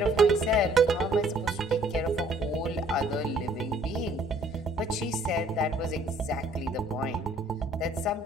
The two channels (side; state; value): both; normal; correlation 0.59